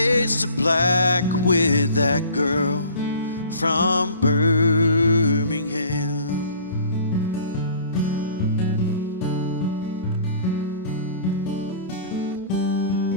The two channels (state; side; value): inverted; both; correlation -0.49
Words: to black with that girl from Birmingham.